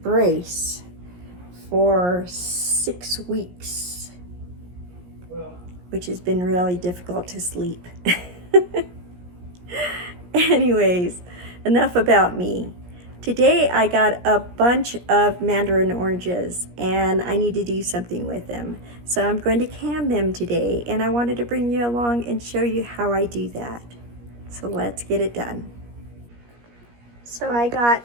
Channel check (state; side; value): late; left; 17 ms